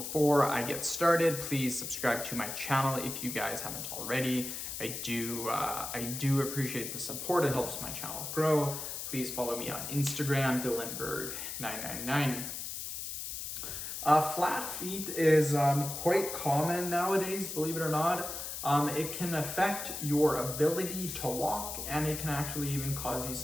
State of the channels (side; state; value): left; noise; hiss, 6 dB below the sound